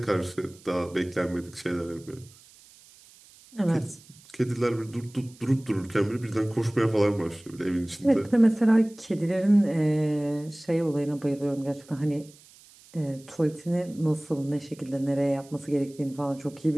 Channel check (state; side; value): noise; right; hiss, 25 dB below the sound